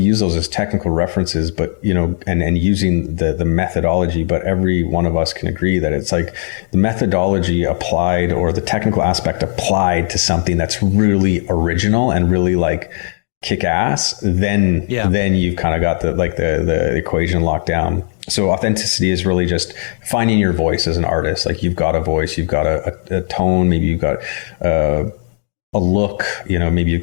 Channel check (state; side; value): silent; right; digital silence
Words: those as technical references, but, and using the methodology, but every one of us can agree that it's like the methodology applied or the technical aspect applied to something that's really original and really like kick ass, then you've kind of got the equation locked down. So authenticity is really just finding your voice as an artist. Like, you've got a voice, you've got a tone, maybe you've got, a look, maybe you've